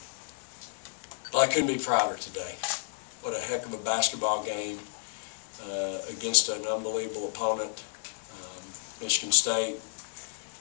Well, I couldn't be prouder today. What a heck of a basketball game against an unbelievable opponent. Michigan State.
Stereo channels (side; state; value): right; silent; 57 dB below the other